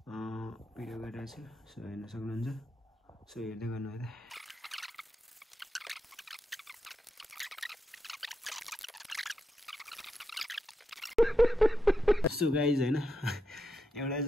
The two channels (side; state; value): both; normal; correlation 0.85